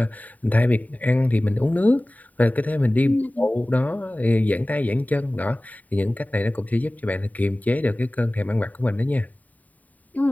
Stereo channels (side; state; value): right; late; 0.074 ms